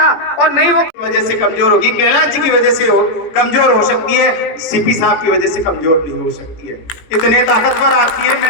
और नहीं वो वजह से कमजोर होगी, कैलाश जी की वजह से कमजोर हो सकती है, सीपी साहब की वजह से कमजोर नहीं हो सकती है। इतने ताकतवर आती है,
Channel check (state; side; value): late; right; 18 ms